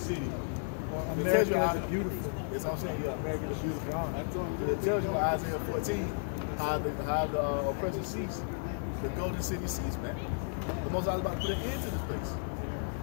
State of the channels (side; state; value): right; silent; 56 dB below the other